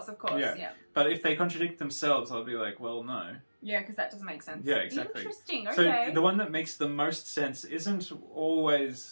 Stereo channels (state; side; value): inverted; both; correlation -1.00